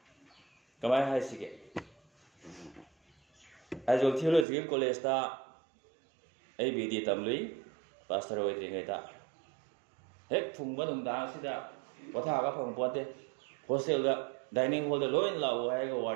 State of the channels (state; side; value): drops out; left; at 4.5 s